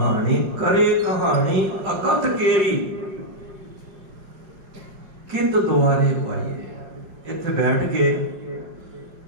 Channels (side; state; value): left; late; 4.7 ms